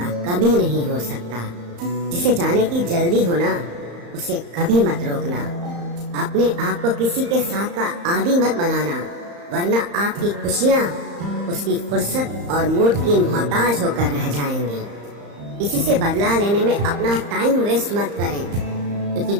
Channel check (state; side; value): late; left; 35 ms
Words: कभी नहीं हो सकता। जिसे जाने की जल्दी हो ना, उसे कभी मत रोकना। अपने आप को किसी के साथ का आदी मत बनाना, वरना आपकी खुशियाँ उसकी फुर्सत और मूड की मोहताज होकर रह जाएंगी। किसी से बदला लेने में अपना टाइम वेस्ट मत करें, क्योंकि